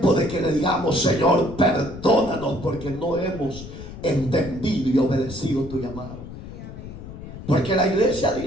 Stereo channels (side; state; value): left; noise; rumble, 12 dB below the sound